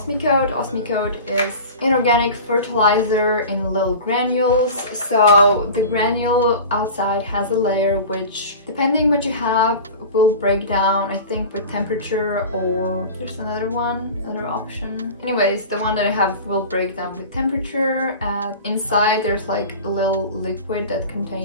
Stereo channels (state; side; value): inverted; both; correlation -0.35